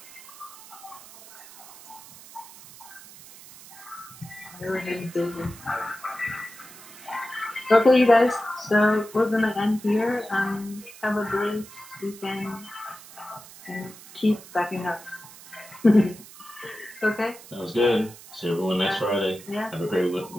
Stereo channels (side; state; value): right; noise; hiss, 18 dB below the sound